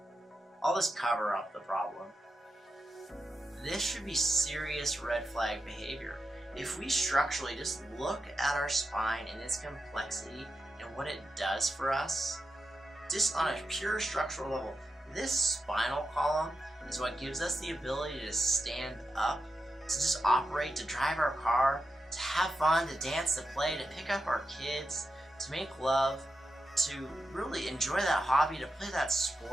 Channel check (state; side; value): normal; both; correlation 0.88